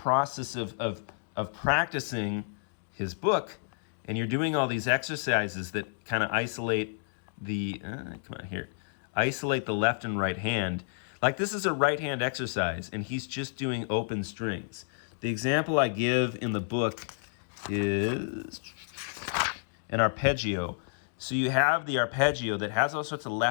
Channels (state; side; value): silent; right; digital silence